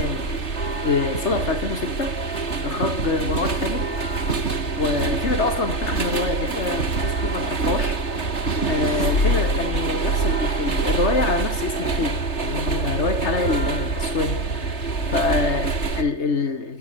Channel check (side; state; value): right; late; 3.3 ms